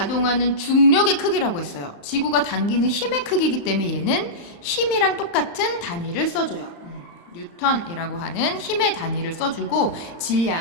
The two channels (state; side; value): late; right; 35 ms